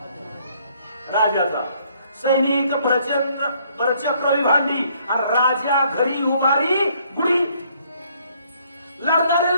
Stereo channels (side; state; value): both; inverted; correlation -0.66